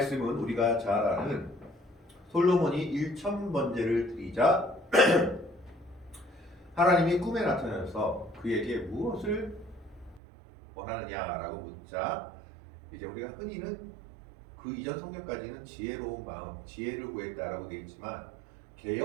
우리가 잘 아는 솔로몬이 1000번제를 드리자 하나님이 꿈에 나타나서 그에게 무엇을 원하느냐라고 묻자 이제 우리가 흔히는 그 이전 성경까지는 지혜로운 마음, 지혜를 구했다라고 되어 있지만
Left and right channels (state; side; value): drops out; left; at 10.2 s